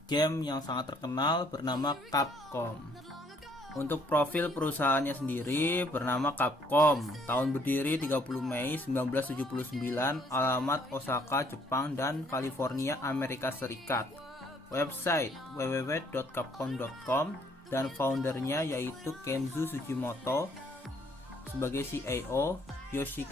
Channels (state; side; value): normal; both; correlation 0.64